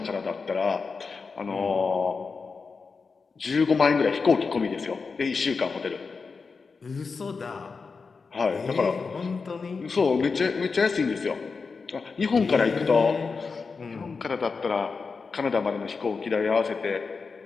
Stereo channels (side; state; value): right; quieter; 4.8 dB